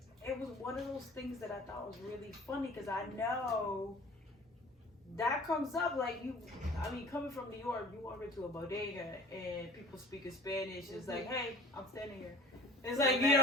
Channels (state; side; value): normal; both; correlation 0.45